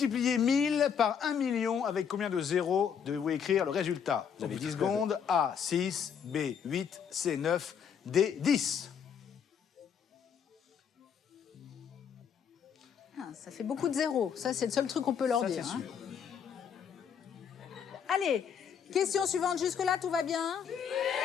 1000 par 1 million, avec combien de zéros devez-vous écrire le résultat? Vous avez 10 secondes. A, 6, B, 8, C, 9, D, 10. Ah, ça fait beaucoup de zéros. Ça, c'est le seul truc qu'on peut leur Ça, dire. c'est hein. sûr. Allez, question suivante. Jusque-là, tout va bien?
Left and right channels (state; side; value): quieter; right; 7.5 dB